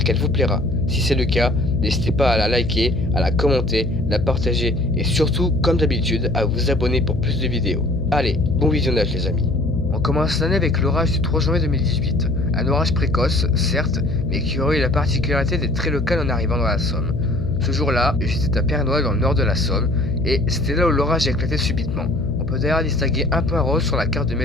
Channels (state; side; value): noise; left; hum, 5 dB below the sound